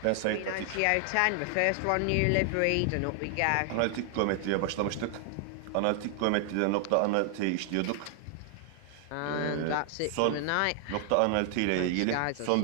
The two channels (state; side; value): different; both; correlation 0.00